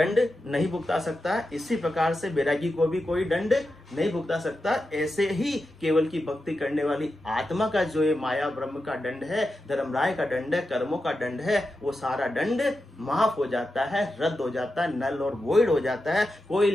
नहीं भुगता सकता है, इसी प्रकार से बैरागी को भी कोई दंड नहीं भुगता सकता। ऐसे ही केवल की भक्ति करने वाली आत्मा का जो ये माया ब्रह्म का दंड है, धर्मराय का दंड है, कर्मों का दंड है, वो सारा दंड माफ हो जाता है, रद्द हो जाता है, नल और वॉइड हो जाता है, कोई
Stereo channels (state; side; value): normal; both; correlation 0.89